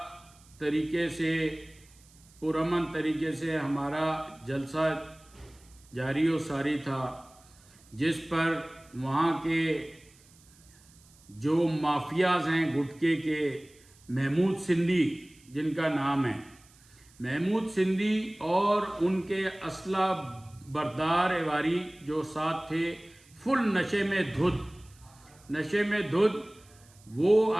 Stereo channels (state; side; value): noise; right; hiss, 27 dB below the sound